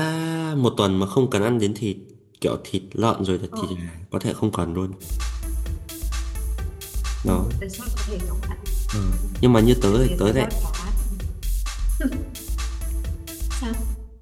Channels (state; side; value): identical; both; correlation 1.00